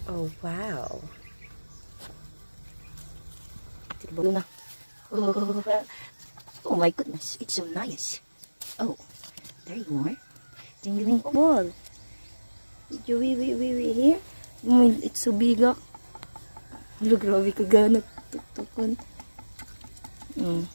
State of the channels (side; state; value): both; inverted; correlation -1.00